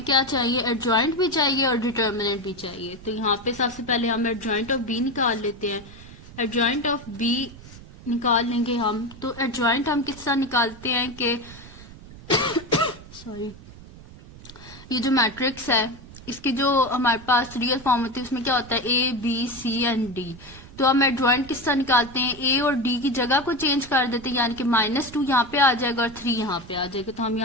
क्या चाहिए, एडजॉइंट भी चाहिए और डिटर्मिनेंट भी चाहिए। तो यहाँ पे सबसे पहले हम एडजॉइंट ऑफ बी निकाल लेते हैं। एडजॉइंट ऑफ बी निकाल लेंगे हम, तो एडजॉइंट हम किस तरह निकालते हैं कि सॉरी, ये जो मैट्रिक्स है इसकी जो हमारे पास रियल फॉर्म होती है उसमें क्या होता है, a b c and d. तो हम एडजॉइंट किस तरह निकालते हैं, ए और डी की जगह को चेंज कर देते हैं, यानी कि -2 यहाँ पे आ जाएगा और 3 यहाँ पे आ जाएगा। तो हम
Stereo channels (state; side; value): noise; right; rumble, 18 dB below the sound